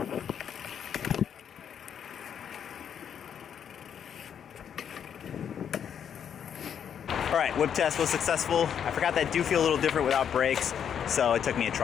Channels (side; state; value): right; quieter; 8.4 dB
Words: Alright, whip test was successful. I forgot that do feel a little different without brakes, so it took me a